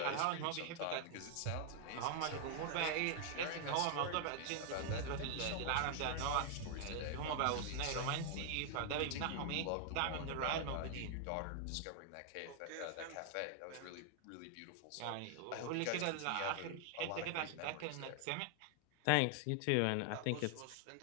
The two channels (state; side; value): different; both; correlation 0.00